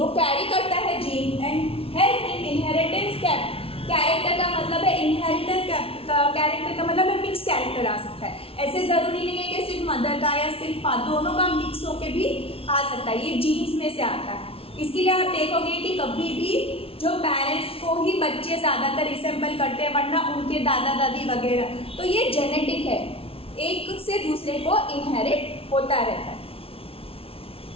कैरी करता है gene and help in inheritance. Character का मतलब है इनहेरिटेंस, कैरेक्टर का मतलब है मिक्स कैरेक्टर आ सकता है. ऐसे ज़रूरी नहीं है कि सिर्फ मदर का या सिर्फ दोनों का मिक्स होके भी आ सकता है. ये जीन्स में से आता है. इसके लिए आप देखोगे कि कभी भी जो पेरेंट्स को ही बच्चे ज़्यादातर रिसेंबल करते हैं, वरना उनके दादा दादी वगैरह. तो ये जेनेटिक है, एक से दूसरे को इनहेरिट होता रहता है.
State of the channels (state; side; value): late; right; 0.27 ms